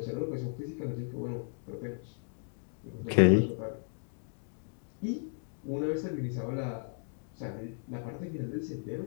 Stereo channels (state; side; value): silent; right; 55 dB below the other